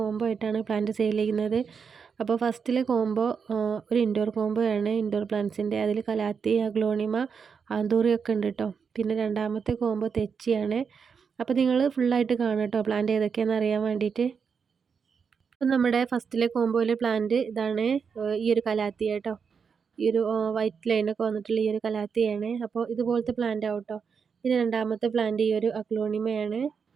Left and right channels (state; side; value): quieter; left; 6.1 dB